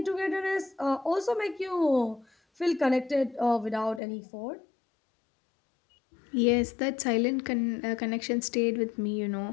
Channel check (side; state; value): right; drops out; at 4.0 s